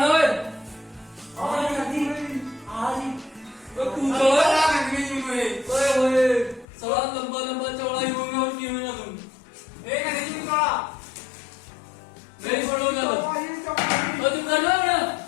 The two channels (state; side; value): drops out; right; at 6.7 s